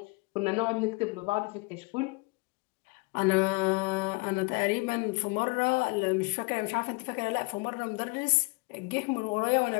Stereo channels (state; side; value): quieter; right; 28.5 dB